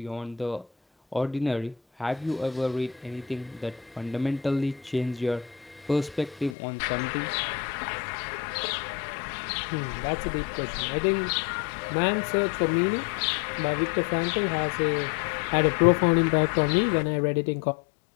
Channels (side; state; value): right; drops out; at 6.6 s